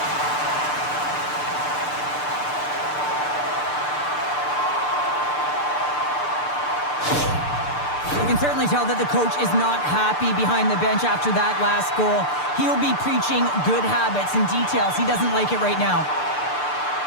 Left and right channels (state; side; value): late; right; 6.8 ms